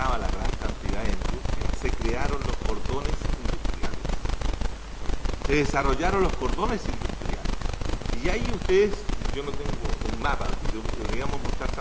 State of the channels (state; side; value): identical; both; correlation 1.00